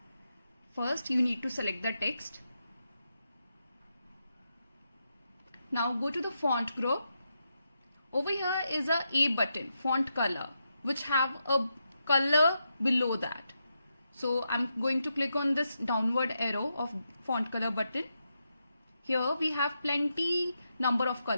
First, you need to select the text. Now go to the font group. Over here is a A button, font color, which have a color below that. So I'm going to click on this downward arrow of font color button. Here we have plenty number of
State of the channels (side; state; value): both; inverted; correlation -0.85